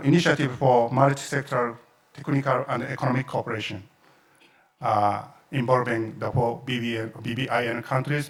Initiative for Multi-Sectoral Technical and Economic Cooperation, involving the four BBIN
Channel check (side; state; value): both; identical; correlation 1.00